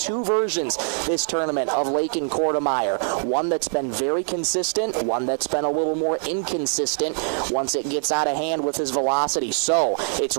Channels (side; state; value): left; silent; 62 dB below the other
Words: versions this tournament of Lakin Kortemeyer. One that's been very consistent, one that's been a little more inconsistent once it gets out of hand with his velocity. So it's